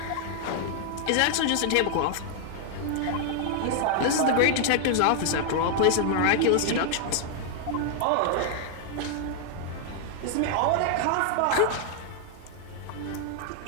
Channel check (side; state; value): both; different; correlation 0.00